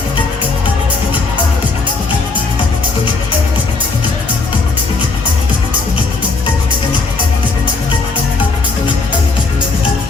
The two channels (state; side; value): quieter; right; 4.0 dB